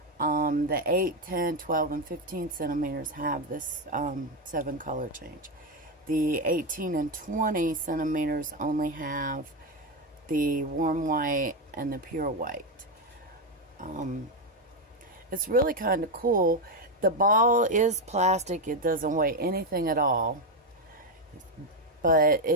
The 8, 10, 12, and 15 centimeters have this 7 color change. The 18 and 20 centimeters only have the warm white and the pure white. It's really kind of cool. The ball is plastic. It doesn't weigh anything at all. But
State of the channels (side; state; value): both; normal; correlation 0.08